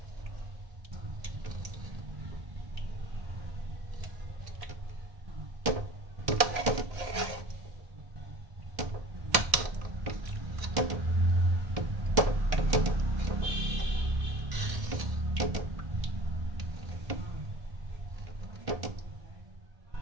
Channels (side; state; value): left; late; 1.6 ms